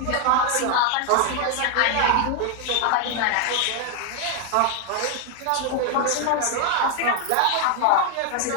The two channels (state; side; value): different; both; correlation 0.01